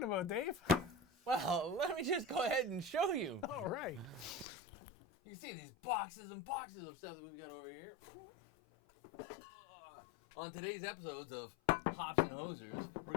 about, Dave? Well, let me just go ahead and show you. All right. You can see these boxes and boxes of stuff that we've got over here. On today's episodes of Hops and Hosers, we're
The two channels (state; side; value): drops out; right; at 4.5 s